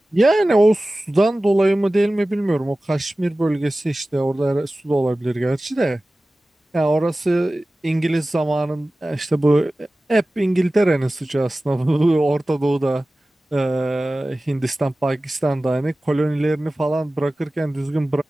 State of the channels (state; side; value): normal; both; correlation 0.97